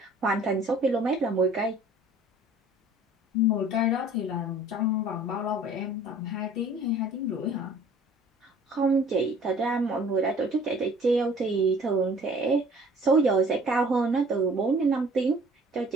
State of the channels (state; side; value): normal; both; correlation 0.51